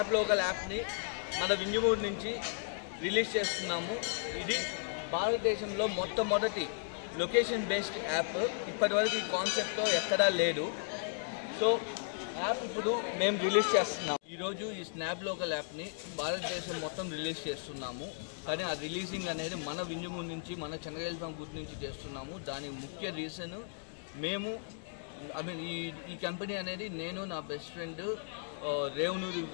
లోకల్ యాప్ని మన వింజమూరు నుంచి రిలీజ్ చేస్తున్నాము. ఇది భారతదేశంలో మొట్టమొదటి లొకేషన్ బేస్డ్ యాప్. ఇప్పటివరకు ఈ కాన్సెప్ట్తో ఎక్కడా లేదు. సో యాప్ ఇప్పుడు మేము రిలీజ్ చేస్తున్నాము. ఈరోజు ఈ స్నాప్ లోకల్ యాప్ని భారతదేశం మొత్తం రిలీజ్ చేస్తున్నాము. కానీ ఆ రిలీజింగ్ అనేది మన వింజమూరు నుంచి, మన చెన్నై గుర్తు నుంచి చేస్తున్నాము. దానికి ముఖ్య రీజన్ మేము ఈ కంపెనీ అనేది నేను, నా best friend Revanuri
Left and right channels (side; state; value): right; silent; digital silence